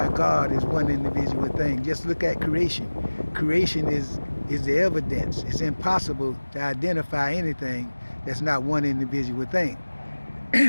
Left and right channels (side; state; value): both; inverted; correlation -1.00